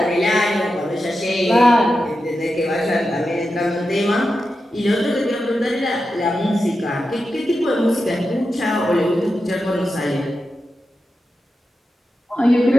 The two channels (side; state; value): both; normal; correlation 0.90